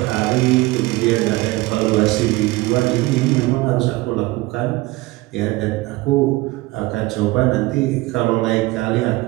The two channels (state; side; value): quieter; left; 20.3 dB